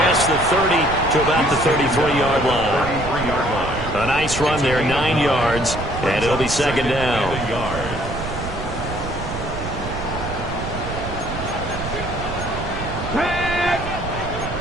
the 30 to about the 33-yard line. A nice run there, 9 yards, and it'll be 2nd down.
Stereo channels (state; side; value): noise; right; rumble, 8 dB below the sound